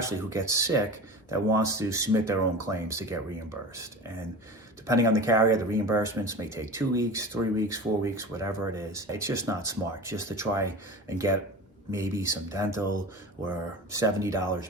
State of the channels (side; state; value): both; normal; correlation 0.32